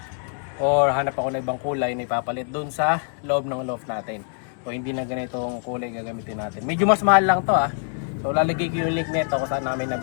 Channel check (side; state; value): right; silent; 62 dB below the other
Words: Or hanap ako na ibang kulay na ipapalit dun sa loob ng loft natin. So hindi na ganitong kulay gagamitin natin. Medyo mas mahal lang to ah. So lalagay ko yung link nito kung saan namin